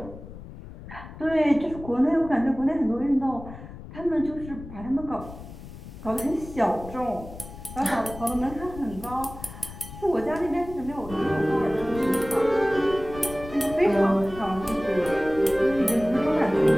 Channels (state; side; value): noise; left; rumble, 14 dB below the sound